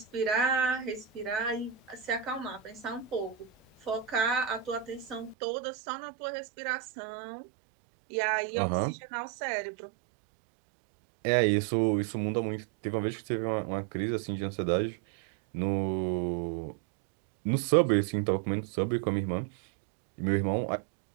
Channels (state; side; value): drops out; left; at 5.4 s